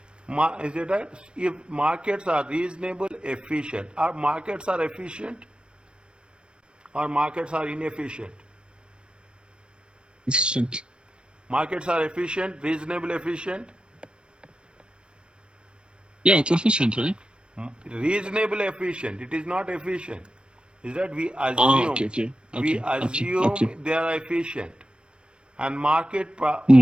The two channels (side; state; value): left; late; 0.056 ms